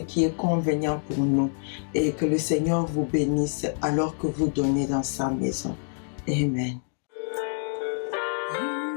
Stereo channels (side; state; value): right; silent; digital silence